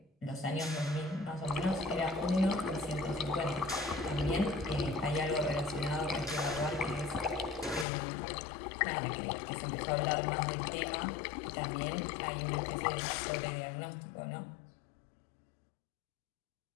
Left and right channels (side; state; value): right; drops out; at 7.9 s